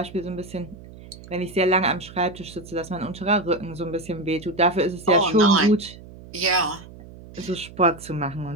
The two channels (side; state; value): right; noise; hum, 18 dB below the sound